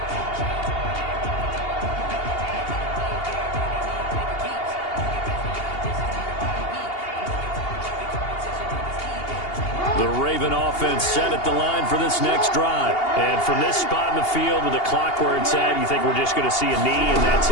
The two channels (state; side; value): late; right; 2.8 ms